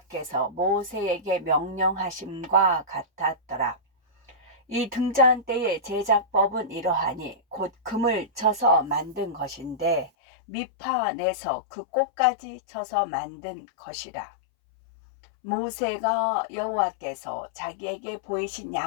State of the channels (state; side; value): drops out; right; at 10.1 s